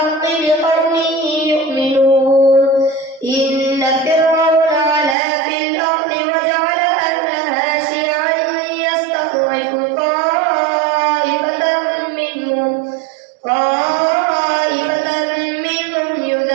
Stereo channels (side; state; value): left; drops out; at 5.2 s